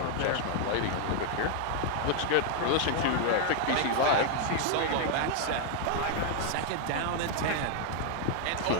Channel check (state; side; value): different; both; correlation 0.00